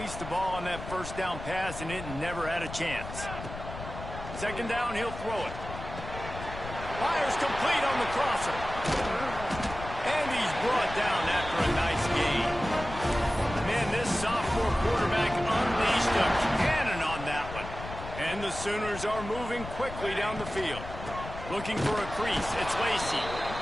the ball on that first down pass, and it never had a chance. 2nd down, he'll throw it. Fires complete on the crosser. And he's brought down after a nice gain. Man, this sophomore quarterback unleashed a cannon on that one. And the Sooners are moving quickly down the field. Looking for a crease, it's Lacey.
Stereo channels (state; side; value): noise; left; rumble, 10 dB below the sound